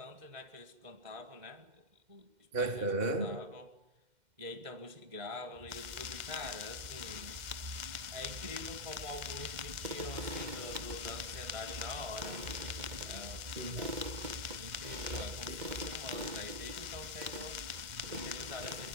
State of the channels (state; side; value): late; left; 2.1 ms